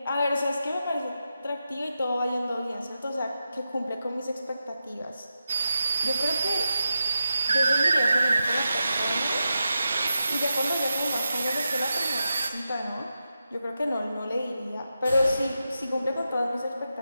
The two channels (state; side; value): inverted; both; correlation -0.89